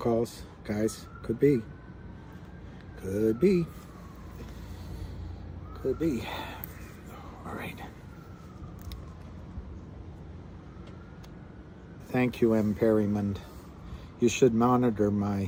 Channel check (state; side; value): identical; both; correlation 1.00